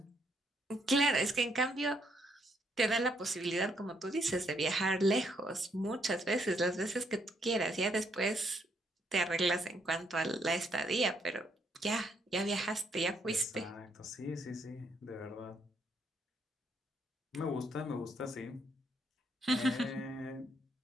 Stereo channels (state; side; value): normal; both; correlation 0.72